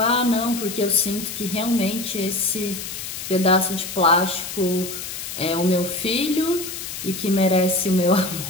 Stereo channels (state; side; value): noise; left; hiss, 8 dB below the sound